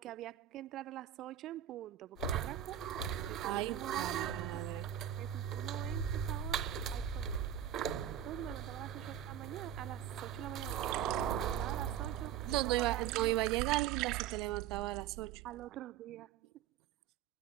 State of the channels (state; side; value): quieter; left; 10.7 dB